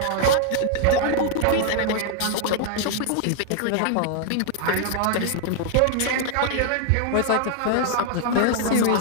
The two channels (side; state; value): both; different; correlation 0.00